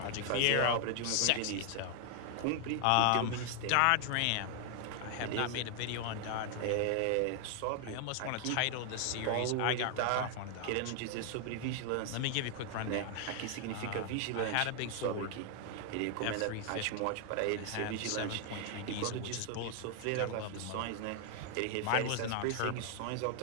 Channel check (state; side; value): different; both; correlation 0.00